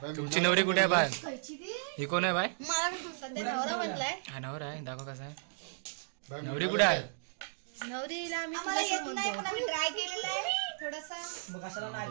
तुमची नवरी कुठे आहे बाय ही कोण आहे बाय मला सध्या नवरा बनलाय हा नवरा आहे दाखव कसा आहे नवरी कुठे आहे नवरीला आम्ही तुला येत नाही पण आम्ही ट्राय केलेला आहे थोडासा मग कशाला नाही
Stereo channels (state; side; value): silent; left; digital silence